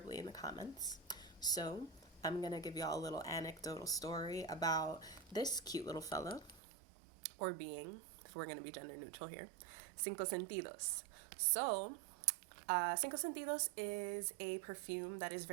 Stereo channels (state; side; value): drops out; left; at 6.6 s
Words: in the comments. So I'm going to give y'all a little anecdotal story about this cute little fellow or being, if we're going to be gender neutral here, Cinco Sentidos. So, Cinco Sentidos is a perfume that is